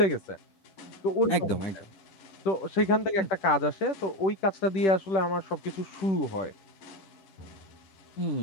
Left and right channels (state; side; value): late; right; 10 ms